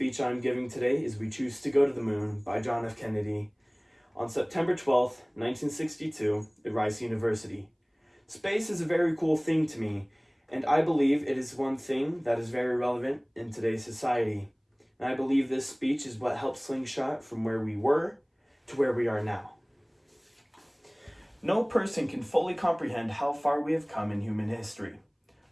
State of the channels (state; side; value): identical; both; correlation 1.00